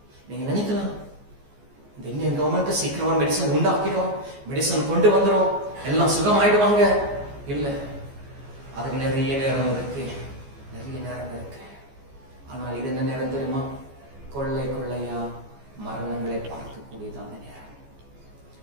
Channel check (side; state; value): left; late; 14 ms